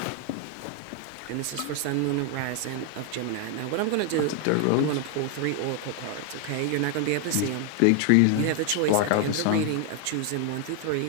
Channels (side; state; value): both; different; correlation 0.00